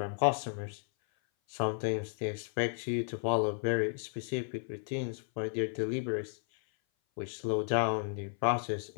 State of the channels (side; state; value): right; silent; 55 dB below the other